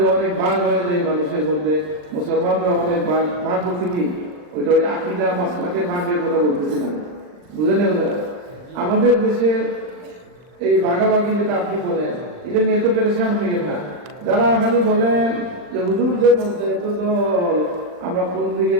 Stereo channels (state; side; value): late; left; 39 ms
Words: অনেক ভাগ হয়ে যাই মানুষের মধ্যে, মুসলমানরা অনেক ভাগ বলতে কি ওইটা ওই আকীদা মাসলাকের ভাগের কথা বলতেছি না, বুঝে নেব। আমাদের দেশের এই ভাগাভাগি যেটা আপনি বলেন, এটা নিয়ে তো পেরেশান হইয়েন না। যারা খালি বলেন যে হুজুরদের মধ্যে এত দল, আমরা কোন দিকে